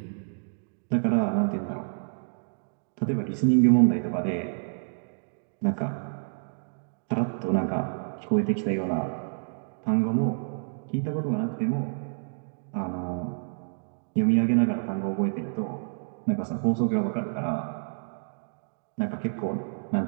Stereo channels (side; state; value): left; silent; digital silence